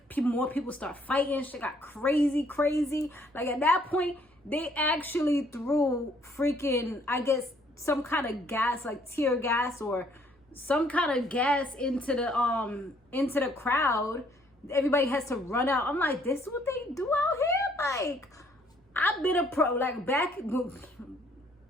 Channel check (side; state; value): both; normal; correlation 0.64